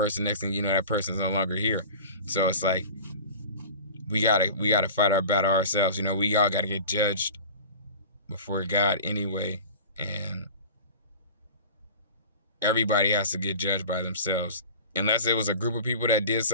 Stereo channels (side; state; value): both; inverted; correlation -0.38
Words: Next thing you know, that person's no longer here. So it's like we gotta fight our battle ourselves. We all gotta get judged before God anyway, and everybody has to get judged by themselves. Unless it was a group of people that did